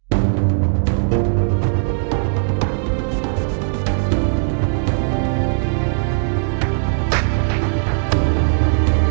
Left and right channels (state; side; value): silent; left; digital silence